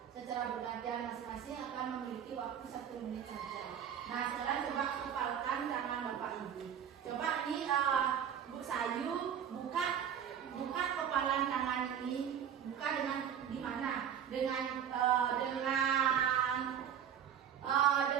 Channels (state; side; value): quieter; left; 8.8 dB